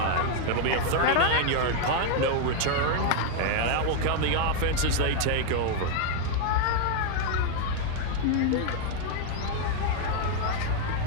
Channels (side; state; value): both; different; correlation 0.00